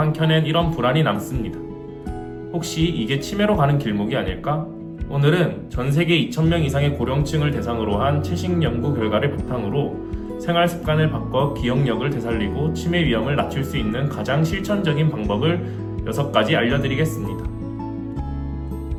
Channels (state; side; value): identical; both; correlation 1.00